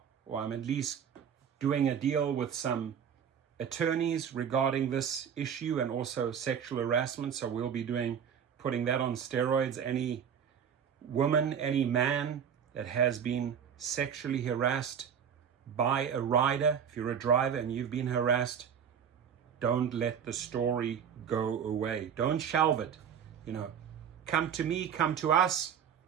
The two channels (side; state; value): left; quieter; 7.9 dB